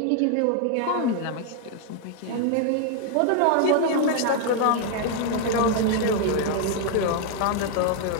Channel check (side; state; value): both; different; correlation 0.00